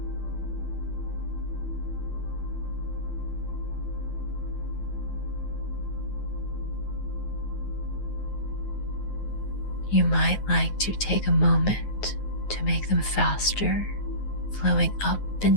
You might like to take a moment to make them faster, flowing up and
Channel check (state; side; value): late; right; 9.4 ms